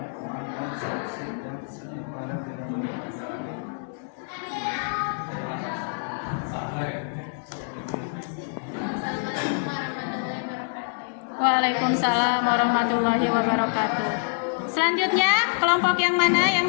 sanksi yang setimpangan dengan masalah. Waalaikumsalam warahmatullahi wabarakatuh. Selanjutnya, kelompok yang mana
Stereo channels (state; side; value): silent; right; digital silence